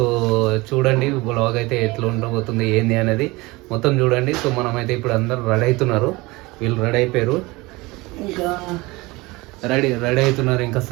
చూడండి, బ్లాగ్ అయితే ఎట్లా ఉండబోతుంది ఏంది అనేది మొత్తం చూడండి. సో మనమైతే ఇప్పుడు అందరు రెడీ అవుతున్నారు, వీళ్ళు రెడీ అయిపోయారు, ఇంకా రెడీ అవుతున్నారు, ఇంకా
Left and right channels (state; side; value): quieter; left; 22.5 dB